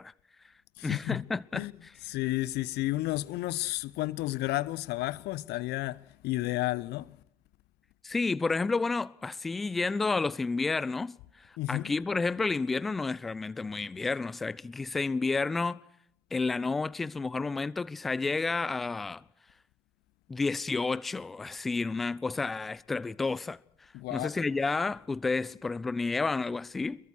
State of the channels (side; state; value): right; quieter; 4.9 dB